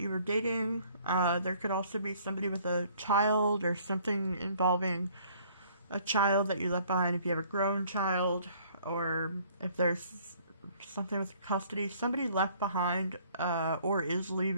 you were dating. There could also be somebody with a child or something involving a child that you left behind if you have a grown child, or if there's something with custody. Somebody left behind, or is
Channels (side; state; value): both; inverted; correlation -0.59